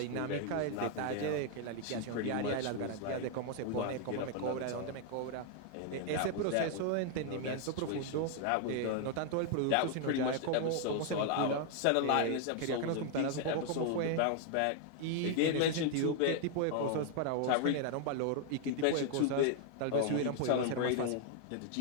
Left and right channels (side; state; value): both; different; correlation 0.00